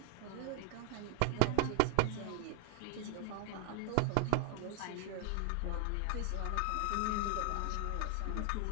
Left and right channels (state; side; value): different; both; correlation 0.00